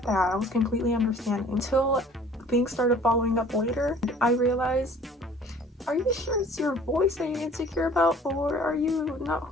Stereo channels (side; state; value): both; normal; correlation 0.51